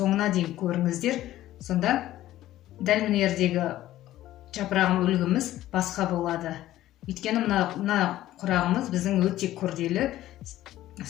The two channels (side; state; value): right; quieter; 14.3 dB